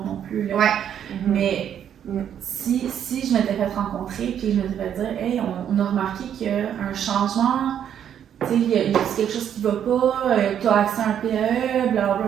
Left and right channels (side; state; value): left; quieter; 9.3 dB